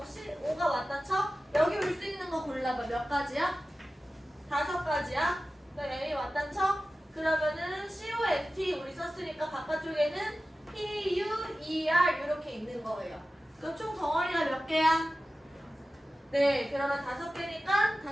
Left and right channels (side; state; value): both; normal; correlation 0.95